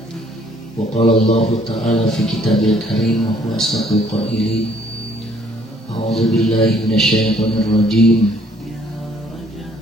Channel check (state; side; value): normal; both; correlation 0.62